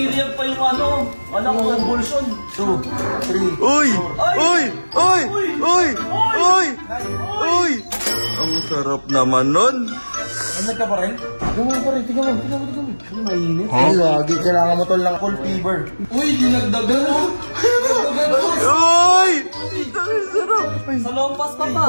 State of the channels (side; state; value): both; inverted; correlation -1.00